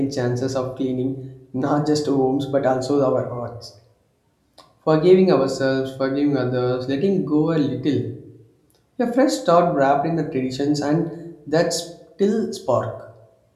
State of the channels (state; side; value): identical; both; correlation 1.00